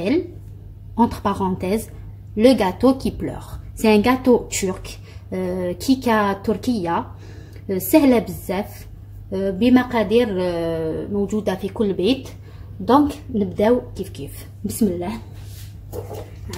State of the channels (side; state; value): both; identical; correlation 1.00